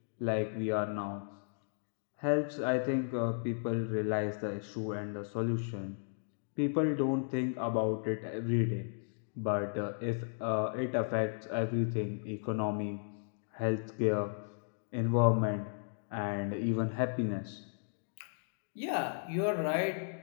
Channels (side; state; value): right; silent; digital silence